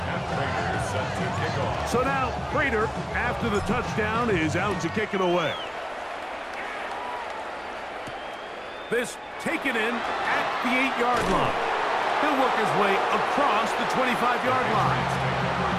So now, Prater, after the touchdown, is out to kick it away. This taken in at the 8-yard line. He'll work his way across the 25-yard line.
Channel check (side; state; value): both; identical; correlation 1.00